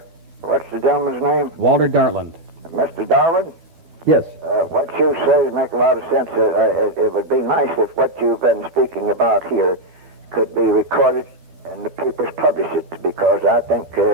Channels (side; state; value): left; late; 13 ms